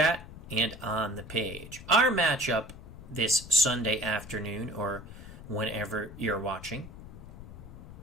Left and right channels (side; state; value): left; noise; rumble, 14 dB below the sound